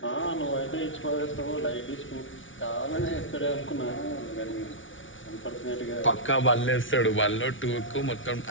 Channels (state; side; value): late; right; 0.56 ms